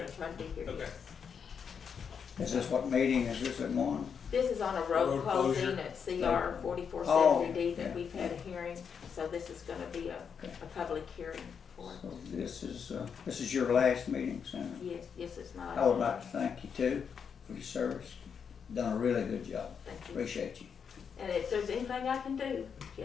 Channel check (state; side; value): quieter; right; 6.8 dB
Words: try to be here, Okay. yes. Is this what meeting is this at 1? This is on a road Road closing closure. at CR 4470D Oh, that yeah. we've had a hearing, so this is gonna be a public hearing for it. So this is your last meeting, Senator. Yes, yes, it's my. I would like to thank you too for your service. Done a really good job. Thank you. Appreciate you. And if there's anything I can do, you